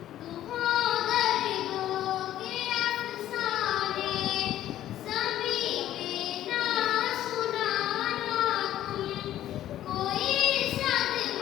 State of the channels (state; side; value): quieter; right; 12.6 dB